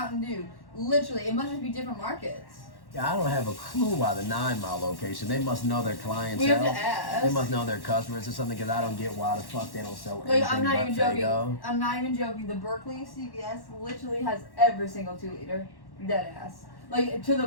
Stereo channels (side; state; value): right; late; 1.1 ms